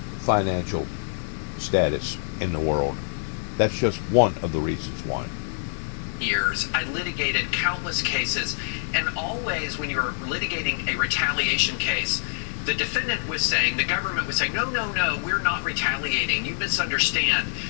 financial status in the world. That's just one of the reasons why. Years, I litigated countless cases, and always when you're litigating a retaliation case, the defendant was saying, the government was saying, no, we're not retaliating, you misunderstand,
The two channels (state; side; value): silent; right; 57 dB below the other